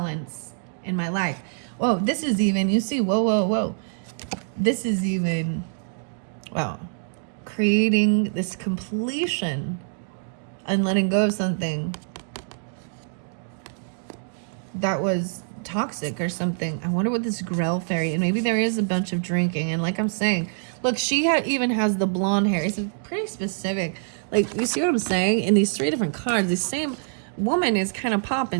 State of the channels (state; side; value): silent; left; digital silence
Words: in my life. Whoa, this is even, you see, whoa. This is even, wow, creating this completion and letting go of something that was toxic or something. I wonder what this Grell fairy, and maybe there is a bunch of drinking. And like I'm saying, look, she even has the blonde hair. It's pretty specific. Like, you see what I'm saying? In these 3 different cards, the same woman is kind of